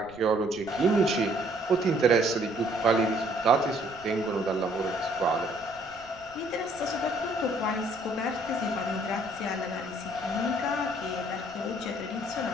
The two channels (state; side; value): noise; right; rumble, 25 dB below the sound